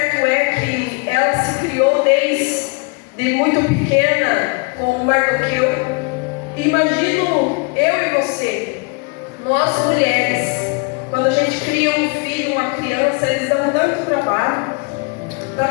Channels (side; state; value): right; quieter; 31.0 dB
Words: é que ela se criou desde muito pequena com Mardoqueu. Imagino eu e você, nós mulheres, quando a gente cria um filho, uma criança, eles dão tanto trabalho para